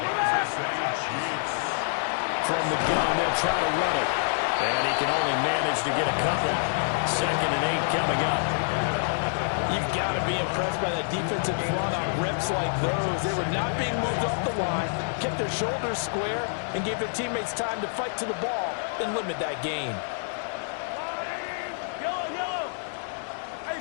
From the gun, they'll try to run it. And he can only manage to get a couple. 2nd and 8 coming up. You've got to be impressed by that defensive front on reps like those. They were not being moved off the line, kept their shoulders square, and gave their teammates time to fight to the ball and limit that gain.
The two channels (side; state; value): right; silent; digital silence